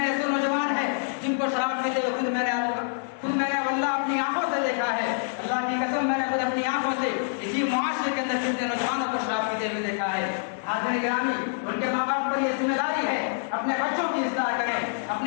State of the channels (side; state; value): right; silent; digital silence